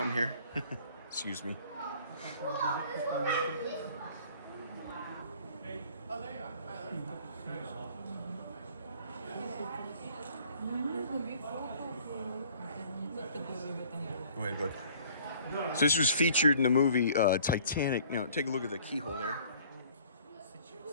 here. Excuse me. Go ahead, bud. So this was featured in the movie Titanic. You know, take a look at the keyhole there.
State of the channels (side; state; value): both; inverted; correlation -0.54